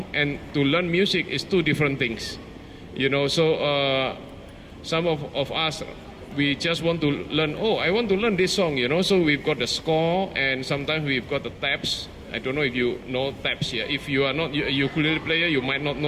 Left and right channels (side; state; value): both; identical; correlation 1.00